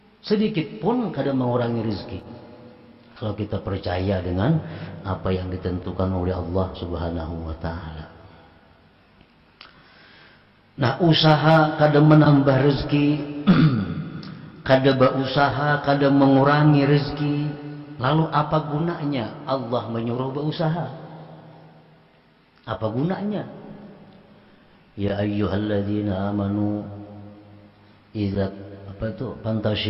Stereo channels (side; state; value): both; identical; correlation 1.00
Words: sedikit pun kadang mengurangi rezeki. Kalau kita percaya dengan apa yang ditentukan oleh Allah Subhanahu wa Ta'ala. Nah, usaha kadang menambah rezeki, kadang berusaha, kadang mengurangi rezeki. Lalu apa gunanya Allah menyuruh berusaha? Apa gunanya? Ya ayyuhalladzina amanu idza